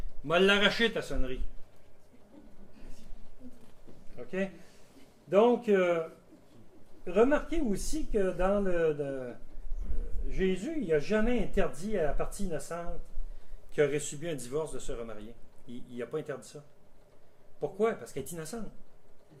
M'a l'arraché ta sonnerie. OK? Donc, remarquez aussi que dans Jésus, il n'a jamais interdit à la partie innocente qui aurait subi un divorce de se remarier. Il n'a pas interdit ça. Pourquoi? Parce qu'elle est innocente.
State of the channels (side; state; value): both; identical; correlation 1.00